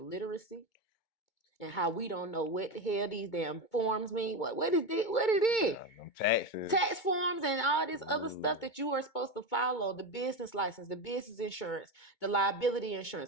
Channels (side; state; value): right; late; 2.2 ms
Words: literacy and how we don't know what the hell these damn forms mean. What is it? What it is? Taxes. Tax forms and all this other stuff that you are supposed to follow. The business license, the business insurance, the liability